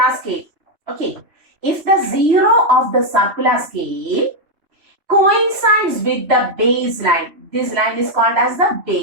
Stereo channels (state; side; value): late; left; 3.1 ms